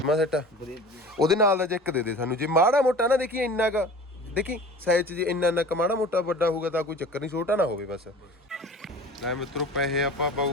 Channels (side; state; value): both; normal; correlation 0.40